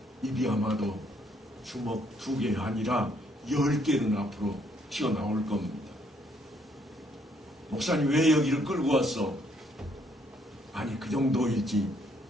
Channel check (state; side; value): normal; both; correlation 0.69